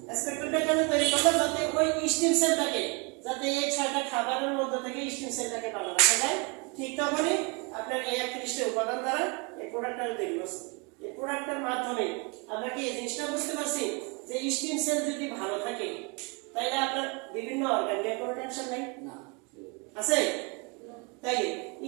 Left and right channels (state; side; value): quieter; left; 31.4 dB